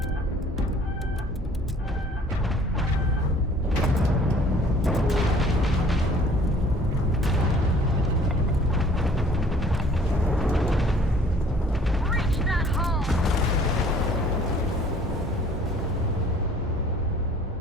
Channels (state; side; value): normal; both; correlation 0.54